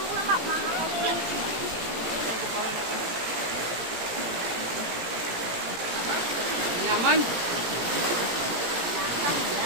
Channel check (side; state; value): left; late; 17 ms